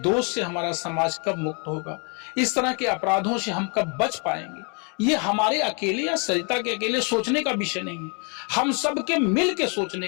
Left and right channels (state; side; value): quieter; right; 35.9 dB